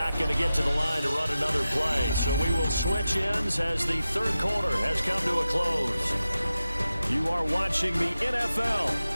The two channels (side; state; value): both; inverted; correlation -0.93